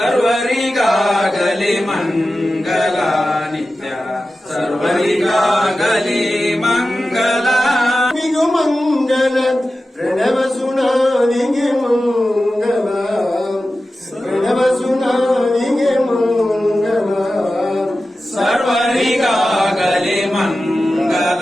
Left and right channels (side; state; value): both; normal; correlation 0.94